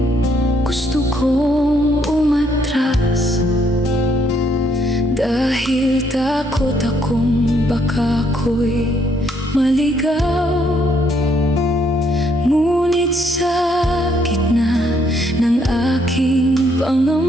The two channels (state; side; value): normal; both; correlation 0.70